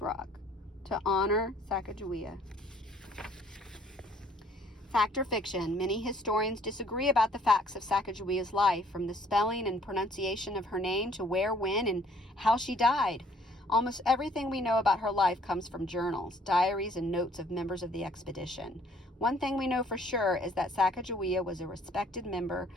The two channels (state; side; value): normal; both; correlation 0.60